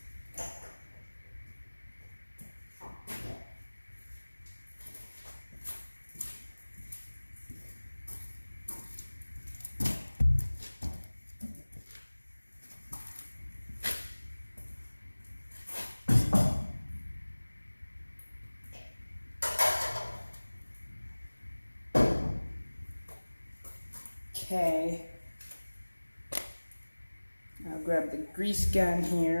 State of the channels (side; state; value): both; inverted; correlation -1.00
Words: Okay, I'll grab the grease gun